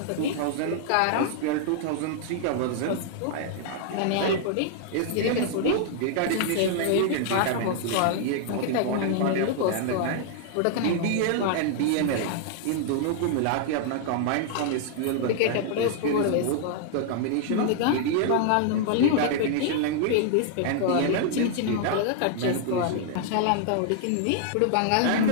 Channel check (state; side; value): different; both; correlation -0.01